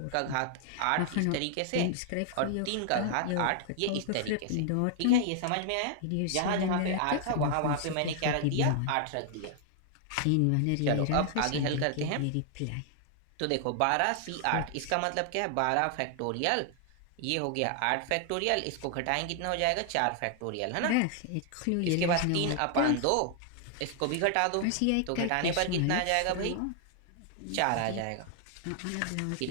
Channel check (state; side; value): different; both; correlation 0.00